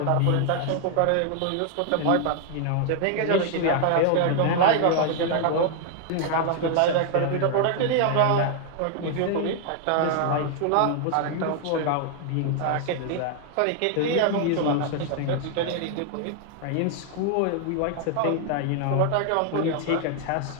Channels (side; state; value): both; different; correlation 0.00